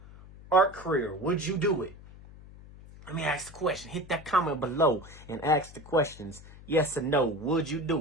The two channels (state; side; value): noise; left; hum, 19 dB below the sound